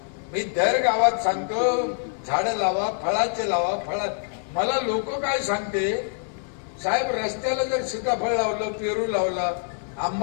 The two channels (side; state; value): right; silent; 62 dB below the other